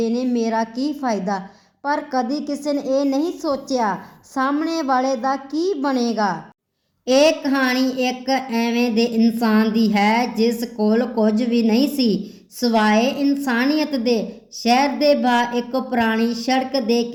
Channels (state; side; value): identical; both; correlation 1.00